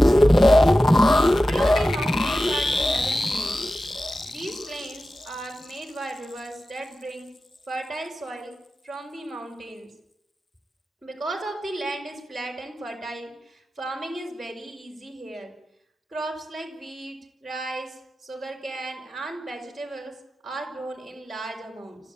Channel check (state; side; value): normal; both; correlation 0.94